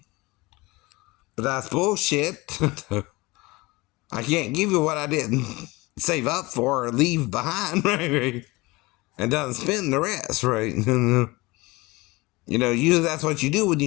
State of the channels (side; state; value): right; quieter; 22.7 dB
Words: But that's bullshit. I can't give you what I didn't save up for or leave behind, right? And doesn't spend the rest, right? Usually that's what you do when